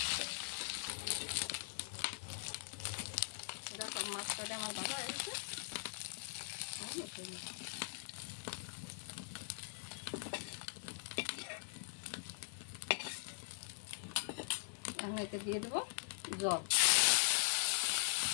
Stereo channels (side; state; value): right; silent; digital silence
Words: সব মাছ কটা আমার ভাজা হয়ে গেছে। এখন এতে দিয়ে দেবো জল।